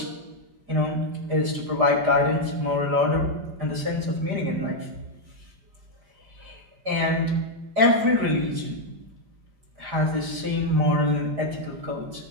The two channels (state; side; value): late; left; 4.9 ms